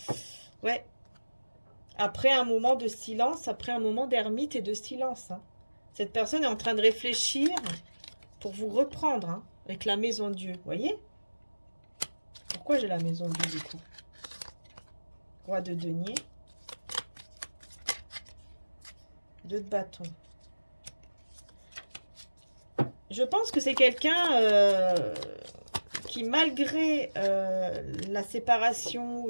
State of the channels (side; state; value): both; inverted; correlation -1.00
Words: Ouais. Après un moment de silence, après un moment d'ermite et de silence. Hein. Cette personne est en train de réfléchir pour vous reprendre hein, avec la maison Dieu. Vous voyez? Pourquoi j'ai la maison Dieu du coup? Roi de denier. 2 de bâton. Je pense que c'est quelqu'un qui, malgré la séparation